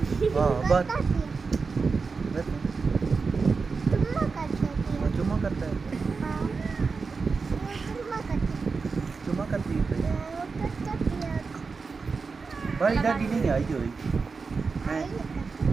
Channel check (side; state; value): left; quieter; 4.7 dB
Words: हाँ बात चुम्मा करता है चुम्मा करती है भाई दादी नहीं आई हुई